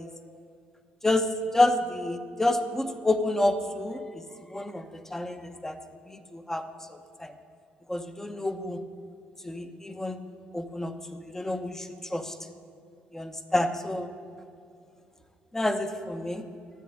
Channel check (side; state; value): both; normal; correlation 0.88